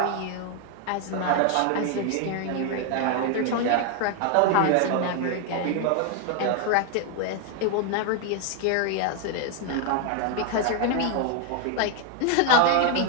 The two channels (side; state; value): both; different; correlation 0.01